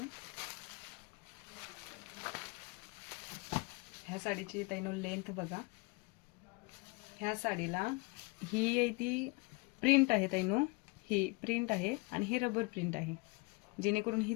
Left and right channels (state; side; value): quieter; right; 27.0 dB